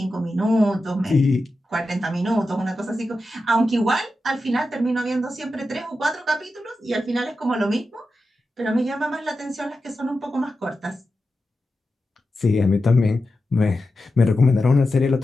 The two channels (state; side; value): normal; both; correlation 0.91